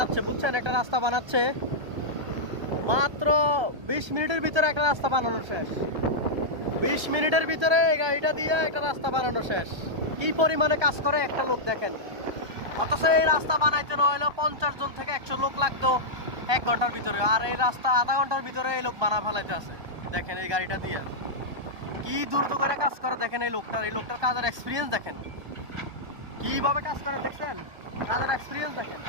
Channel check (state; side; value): late; left; 1.2 ms